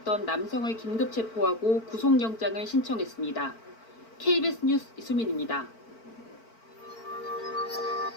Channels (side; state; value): right; late; 4.5 ms